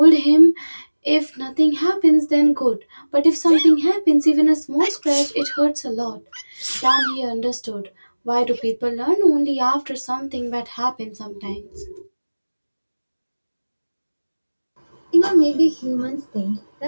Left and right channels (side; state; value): both; inverted; correlation -1.00